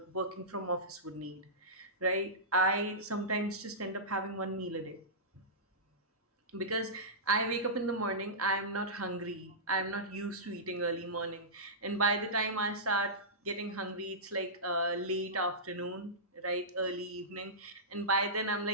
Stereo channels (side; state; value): both; normal; correlation -0.17